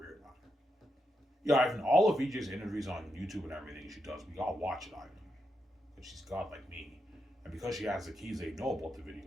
now. Yeah, Ivan, all of VJ's interviews on YouTube and everything she does, we all watch it, Ivan. Because she's God like me. And because she has the keys, they know about the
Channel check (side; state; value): both; normal; correlation 0.84